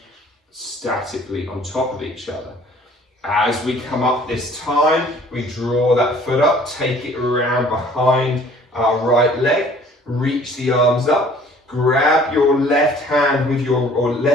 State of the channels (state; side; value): normal; both; correlation 0.54